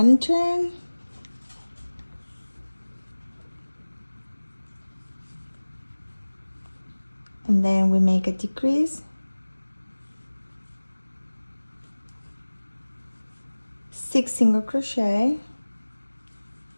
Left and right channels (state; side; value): inverted; both; correlation -1.00